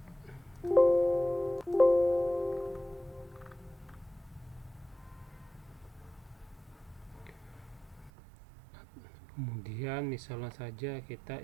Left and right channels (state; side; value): drops out; left; at 8.1 s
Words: Kemudian misalnya saja kita